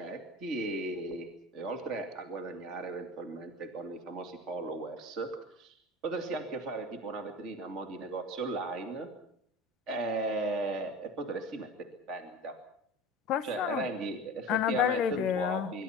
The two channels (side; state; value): both; normal; correlation 0.34